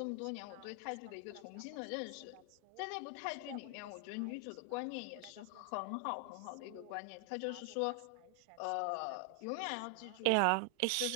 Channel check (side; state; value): both; different; correlation 0.00